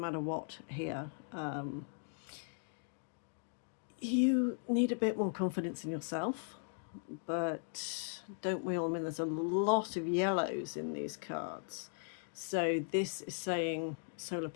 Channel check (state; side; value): silent; right; digital silence